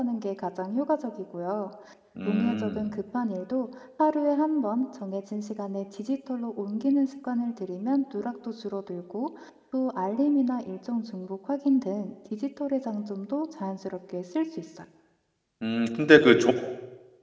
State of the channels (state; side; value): identical; both; correlation 1.00